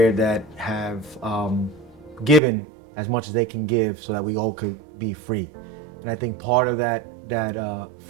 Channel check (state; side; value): drops out; left; at 2.4 s